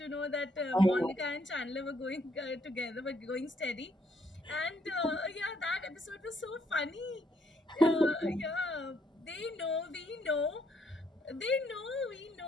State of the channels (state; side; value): normal; both; correlation 0.71